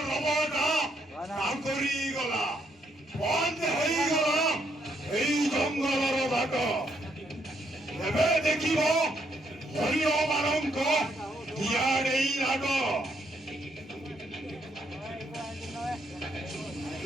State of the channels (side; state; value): both; normal; correlation 0.73